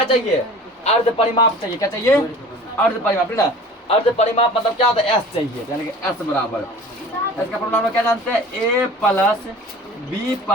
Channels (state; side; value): normal; both; correlation 0.43